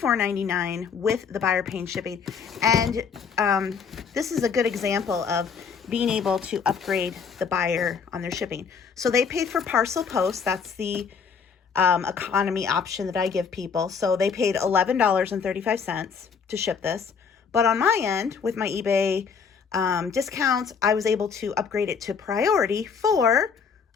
with the buyer paying shipping. And this is a good example of being able to upgrade the buyer on their shipping. So they paid for parcel post. That's the economy option that I give people. So they paid $11.35 to ship this. But on my end, with my eBay discounts, I was able to upgrade it to priority for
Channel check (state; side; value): quieter; right; 6.1 dB